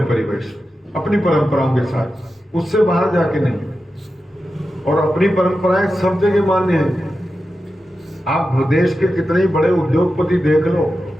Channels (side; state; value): both; normal; correlation 0.91